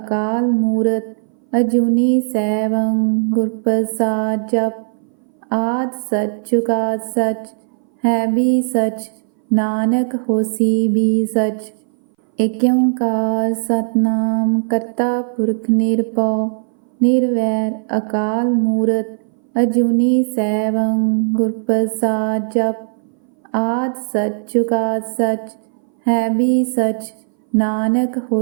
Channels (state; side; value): silent; left; 61 dB below the other